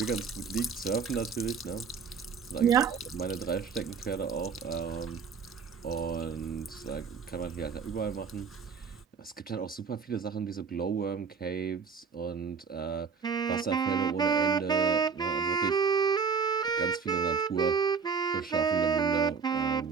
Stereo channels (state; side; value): quieter; left; 5.9 dB